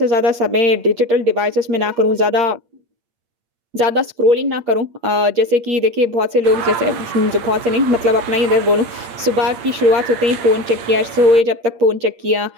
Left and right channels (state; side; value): late; left; 8.7 ms